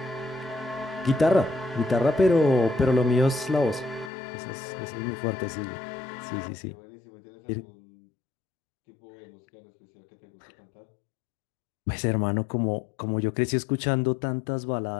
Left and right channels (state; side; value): drops out; right; at 4.1 s